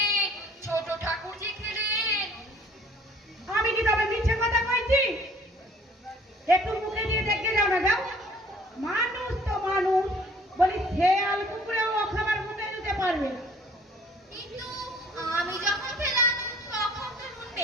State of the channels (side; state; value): both; normal; correlation 0.55